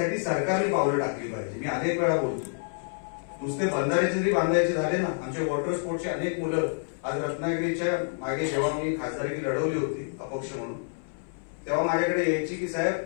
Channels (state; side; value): silent; right; 59 dB below the other